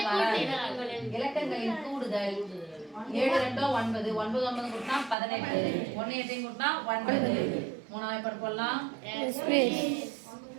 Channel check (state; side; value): drops out; left; at 5.2 s